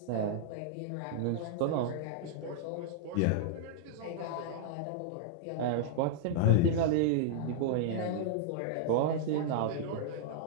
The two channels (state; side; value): different; both; correlation -0.01